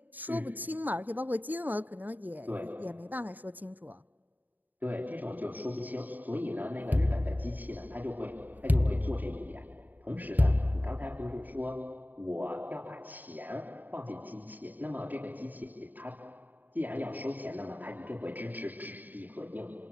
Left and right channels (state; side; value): late; left; 0.086 ms